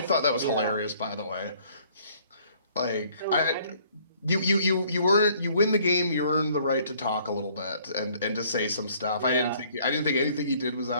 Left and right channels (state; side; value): inverted; both; correlation -0.60